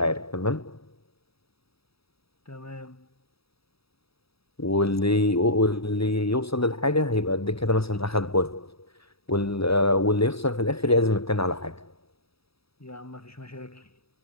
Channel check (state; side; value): late; right; 0.77 ms